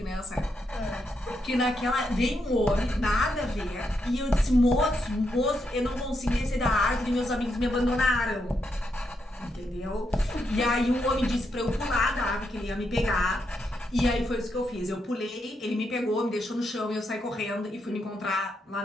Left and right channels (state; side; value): normal; both; correlation 0.81